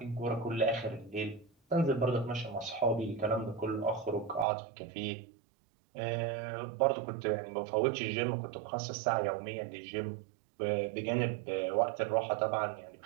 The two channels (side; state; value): left; drops out; at 4.5 s